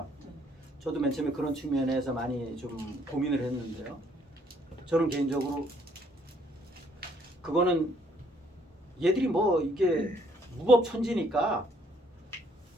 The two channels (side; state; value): both; normal; correlation 0.66